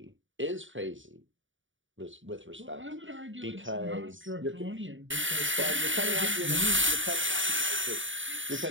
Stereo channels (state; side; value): late; left; 0.56 ms